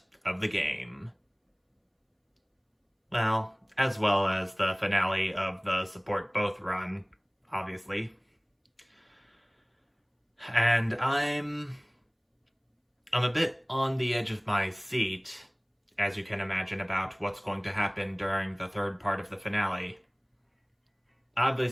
of the game. Well as the finale of the Support Both run, obviously. And I'm a bit on the edge of my seat, as you can imagine, about what's going to happen during the third part of the finale.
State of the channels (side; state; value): both; identical; correlation 1.00